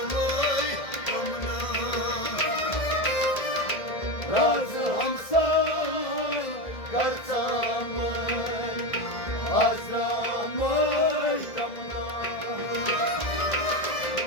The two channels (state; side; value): late; right; 1.7 ms